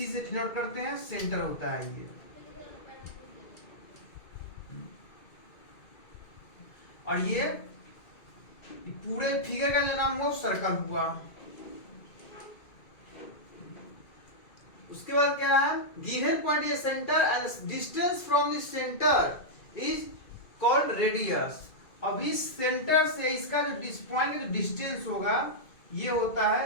से डिनोट करते हैं, सेंटर होता है ये। और ये पूरे फिगर का जो नाम हुआ सर्कल हुआ। उसके बाद क्या है, given point is centre and distance from this centre is called radius. अब इस सेंटर से इसका जो पॉइंट का जो डिस्टेंस होगा ये होता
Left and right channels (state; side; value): late; right; 2.2 ms